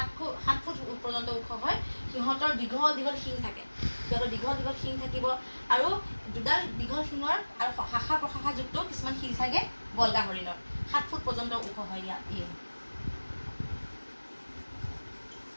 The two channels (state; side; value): inverted; both; correlation -1.00